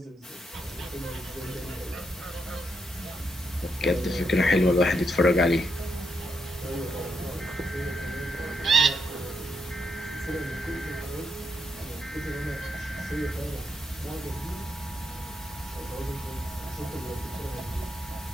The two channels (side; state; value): both; normal; correlation 0.80